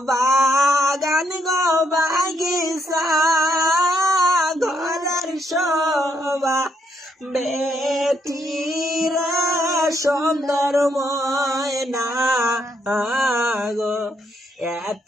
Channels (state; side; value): normal; both; correlation 0.75